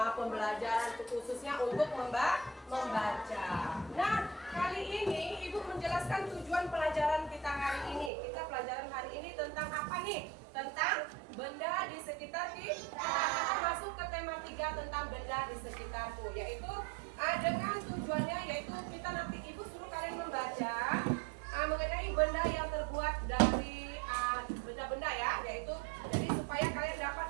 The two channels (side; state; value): left; drops out; at 8.1 s